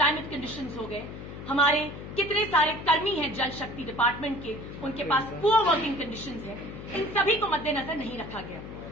कंडीशंस हो गए, हमारे कितने सारे कर्मी हैं जल शक्ति डिपार्टमेंट के, उनके पास पुअर वर्किंग कंडीशंस हैं, इन सभी को मद्देनजर नहीं रखा गया।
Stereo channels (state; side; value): noise; left; hum, 11 dB below the sound